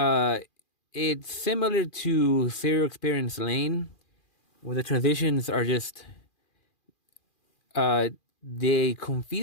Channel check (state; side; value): late; right; 2.4 ms